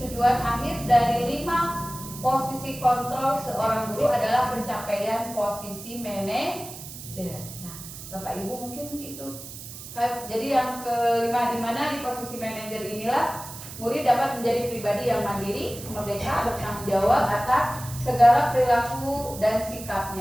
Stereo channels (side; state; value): right; noise; hiss, 13 dB below the sound